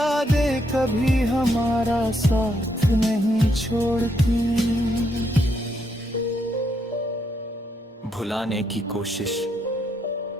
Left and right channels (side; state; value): both; normal; correlation 0.76